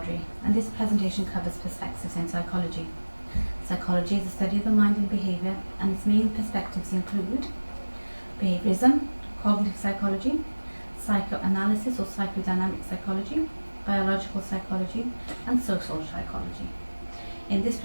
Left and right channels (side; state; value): both; inverted; correlation -1.00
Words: and this presentation covers perspectives in psychology. Psychology is the study of the mind and behaviour, and its main perspectives include behaviorism, cognitive psychology, psychoanalysis or psychodynamic psychology, biological psychology, and social psychology. In this